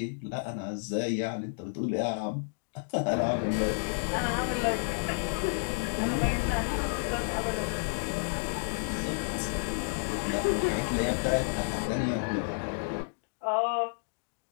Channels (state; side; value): silent; right; digital silence